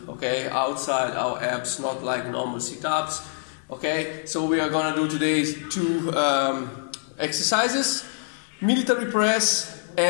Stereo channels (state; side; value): silent; right; 62 dB below the other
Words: okay, outside our abs, not like normal sit-ups. Okay, so we are gonna do today two exercises: military press